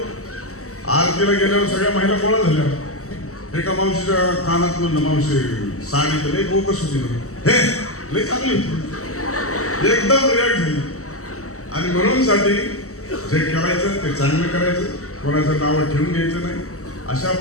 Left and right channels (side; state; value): right; late; 0.64 ms